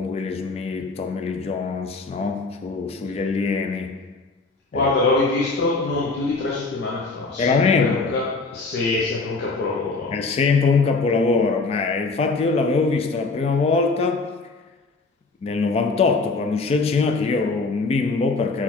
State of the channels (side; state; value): right; quieter; 3.8 dB